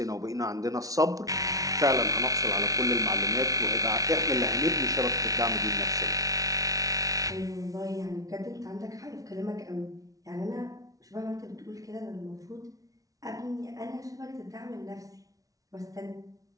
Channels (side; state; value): left; late; 0.17 ms